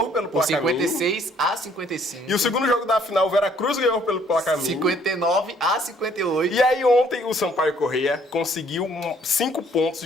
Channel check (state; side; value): normal; both; correlation 0.62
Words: pelo placar mínimo. 56-55. E o segundo jogo da final, o Veracruz ganhou pelo placar mínimo. 59-58. E aí ontem o Sampaio Corrêa conseguiu 5 pontos